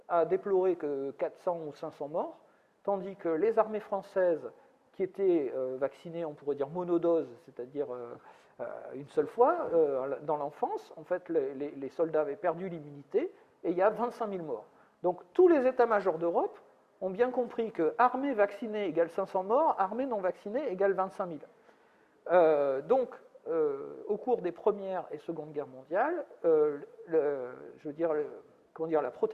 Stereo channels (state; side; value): identical; both; correlation 1.00